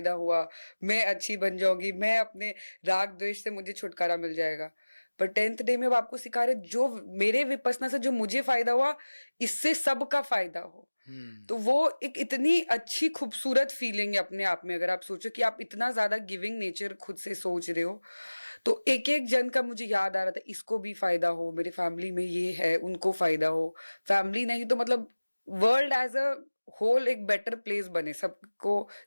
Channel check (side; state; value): both; inverted; correlation -1.00